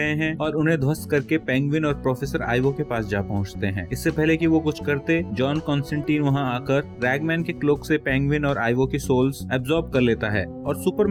हैं और उन्हें ध्वस्त करके पेंगुइन और प्रोफेसर आइवो के पास जा पहुँचते हैं। इससे पहले कि वो कुछ करते, जॉन कॉन्स्टेंटीन वहाँ आकर रैगमैन के क्लोक से पेंगुइन और आइवो की सोल्स एब्जॉर्ब कर लेता है और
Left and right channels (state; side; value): identical; both; correlation 1.00